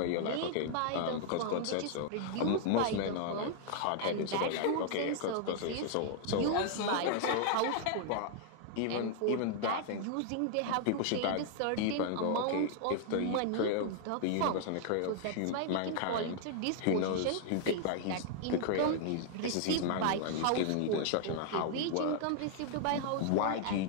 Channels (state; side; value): different; both; correlation 0.00